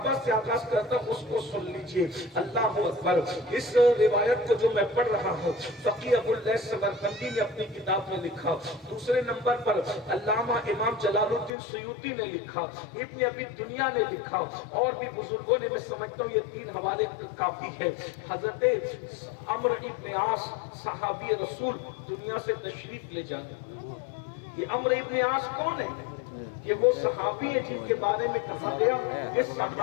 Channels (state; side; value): drops out; right; at 11.5 s